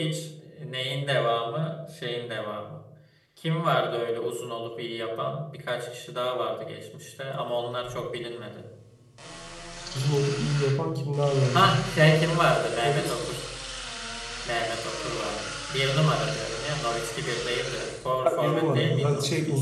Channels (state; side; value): identical; both; correlation 1.00